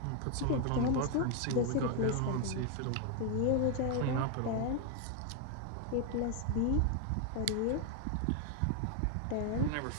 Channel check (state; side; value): different; both; correlation 0.00